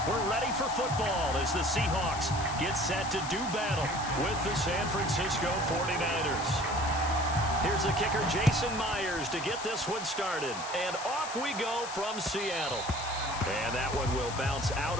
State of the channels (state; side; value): noise; left; hiss, 9 dB below the sound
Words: We're ready for football as the Seahawks get set to do battle with the San Francisco 49ers. Here's the kicker, Jason Myers, to get this one started. And off we go from Seattle. And that one will bounce out